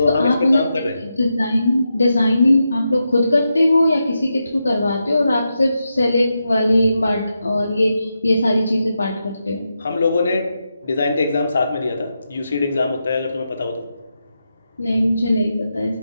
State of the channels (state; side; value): inverted; both; correlation -0.87